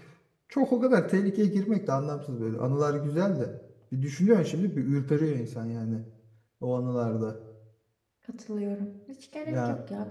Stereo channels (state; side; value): identical; both; correlation 1.00